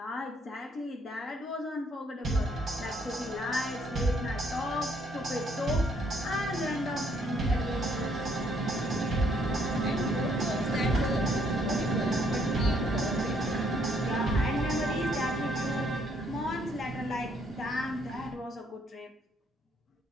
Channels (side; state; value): both; normal; correlation 0.68